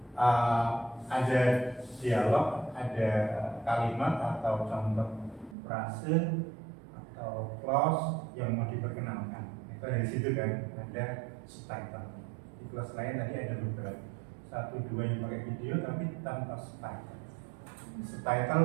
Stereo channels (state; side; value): drops out; left; at 5.6 s